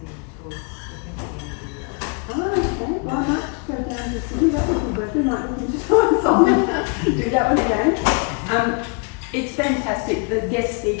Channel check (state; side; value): quieter; right; 35.3 dB